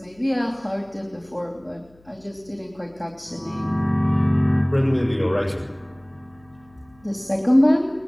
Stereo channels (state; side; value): noise; left; hum, 29 dB below the sound